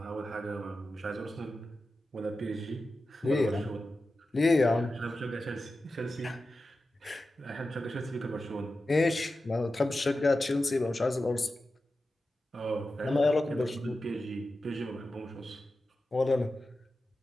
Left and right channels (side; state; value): both; normal; correlation 0.92